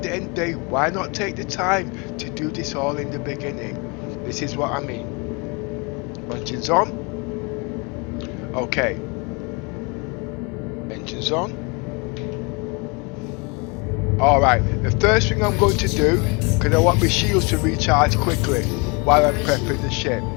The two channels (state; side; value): quieter; right; 30.4 dB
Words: the end of the day, why not take the time to do this all in the beginning? This is what I mean. Engines on. Okay. Engines on. Alright, the first thing I'm going to do, because I want my shields to recharge quickly while I'm prepping the ship.